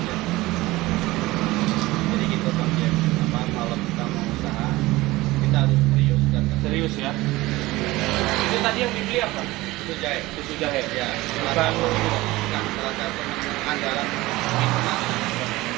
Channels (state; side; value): quieter; left; 19.2 dB